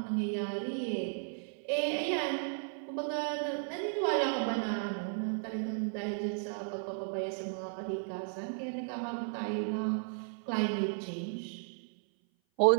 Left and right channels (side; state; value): left; silent; 55 dB below the other